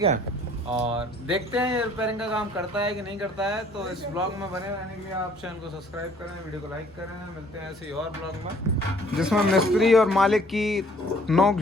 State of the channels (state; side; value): normal; both; correlation 0.58